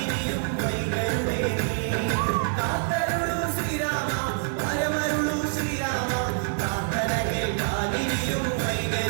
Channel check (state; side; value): silent; left; 60 dB below the other